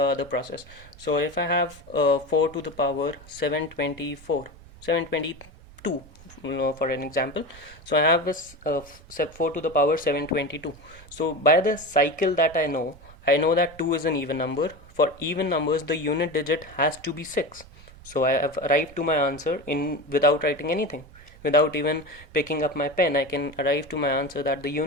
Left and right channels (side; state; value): right; noise; rumble, 21 dB below the sound